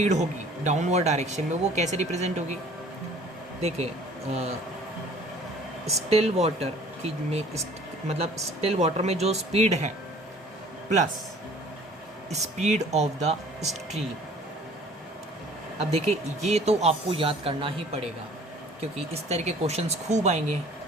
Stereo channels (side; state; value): both; normal; correlation 0.51